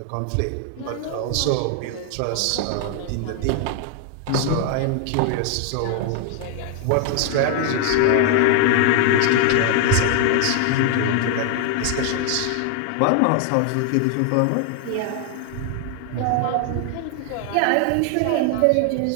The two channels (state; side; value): different; both; correlation 0.00